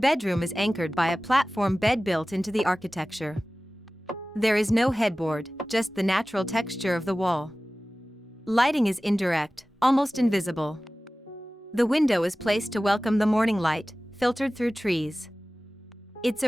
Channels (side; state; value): both; normal; correlation 0.97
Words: is anchored by a platform bed built into the architecture. There is no headboard, just the natural texture of the wall. Lighting is indirect, almost invisible. The window is placed to welcome the morning light, filtered through trees. It's